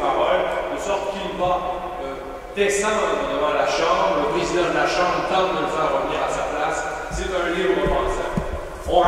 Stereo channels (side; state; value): both; identical; correlation 1.00